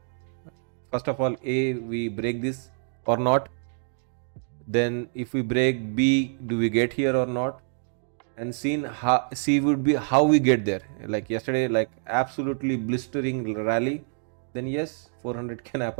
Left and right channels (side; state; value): left; silent; 61 dB below the other